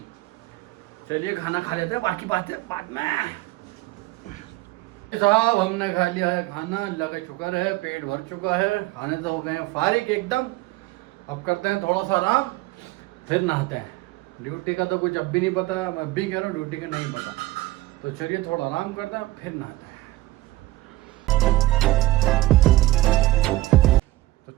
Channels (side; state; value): left; quieter; 17.8 dB